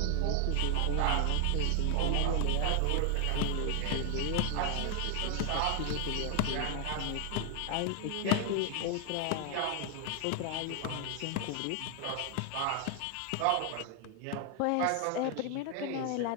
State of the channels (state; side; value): different; both; correlation 0.01